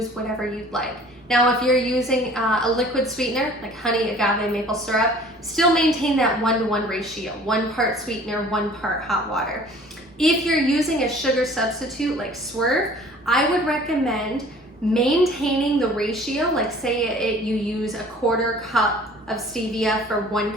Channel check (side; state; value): both; normal; correlation 0.50